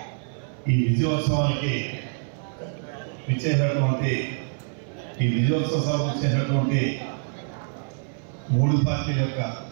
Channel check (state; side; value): silent; left; 59 dB below the other